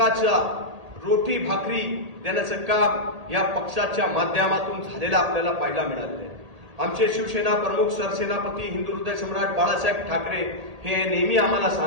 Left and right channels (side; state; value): left; late; 1.8 ms